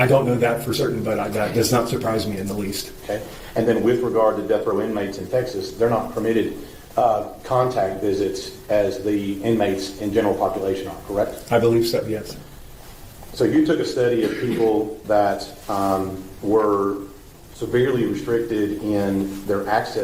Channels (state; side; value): identical; both; correlation 1.00